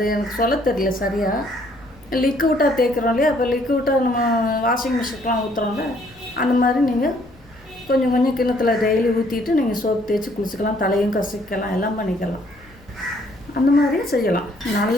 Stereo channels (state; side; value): noise; left; rumble, 27 dB below the sound